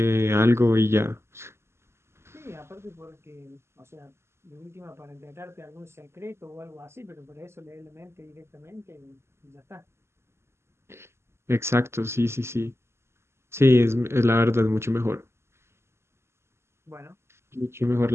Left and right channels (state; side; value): late; left; 0.12 ms